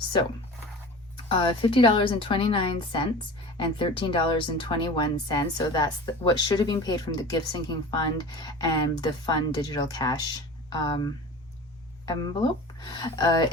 $50.29 and $13.21. So that's what should have been paid from the gift sinking fund and the fund digital cash envelope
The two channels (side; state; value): both; normal; correlation 0.36